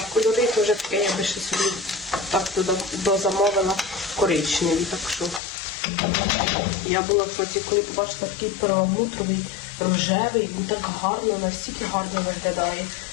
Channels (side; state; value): right; drops out; at 5.4 s